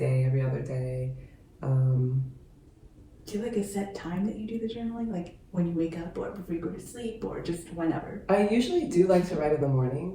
every other day. Do you have like a set time that you do the journaling? Like when you wake up or before you go to sleep or just whenever? I usually do like to write in the morning.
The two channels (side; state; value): both; identical; correlation 1.00